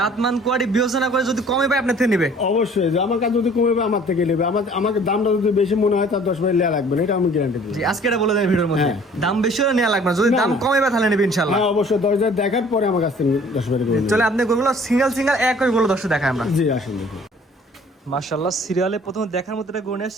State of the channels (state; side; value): normal; both; correlation 0.53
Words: কোয়ালিটি বিবেচনা করে যদি কমে পায় আপনার থেকে নেবে। অবশ্যই যে আমার কাছে যদি কমে পায় আমার থেকে নেবে, আমাকে দামটা যদি বেশি মনে হয় তার 10 ভাই নেওয়া লাগবে না, এটা আমি গ্যারান্টি দিই। জি আজকে এটা বলে দেন ভিডিওর মধ্যে, দাম বেশি হলে নেওয়া লাগবে না, যদি দাম কমে পায় তাহলে নেবে ইনশাআল্লাহ। হ্যাঁ অবশ্যই 10 জায়গায় দেখার পরে আমার কাছ থেকে 10 ভাই করে চলে আপনি গরুগুলো সিঙ্গেল এক করে গরু দর্শক দেখায় আমরা। জি আসুন দেখুন। মাশাআল্লাহ সিরিয়ালে প্রথমে দেখার মতো একটা গরু নিয়ে